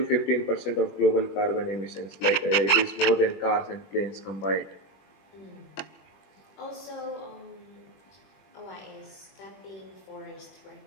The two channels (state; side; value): late; right; 20 ms